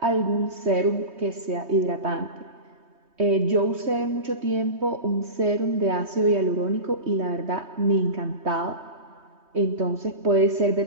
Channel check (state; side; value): late; left; 3.2 ms